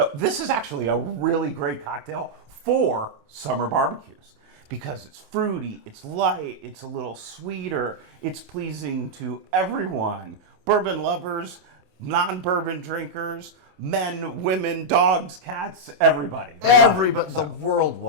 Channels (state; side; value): late; left; 27 ms